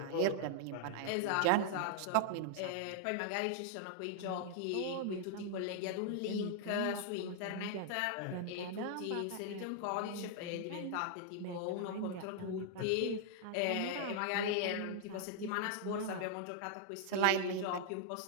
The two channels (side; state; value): both; different; correlation -0.01